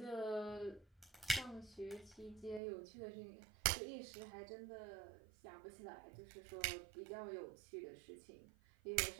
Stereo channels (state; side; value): drops out; left; at 2.6 s